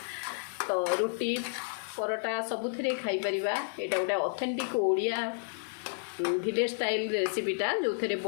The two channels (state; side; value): silent; right; digital silence